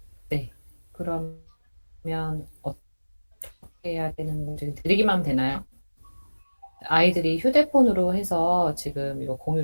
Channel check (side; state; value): both; inverted; correlation -1.00